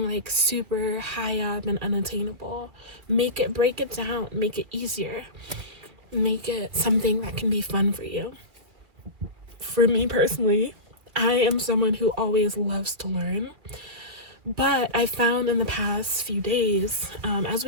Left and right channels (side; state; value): left; late; 2.4 ms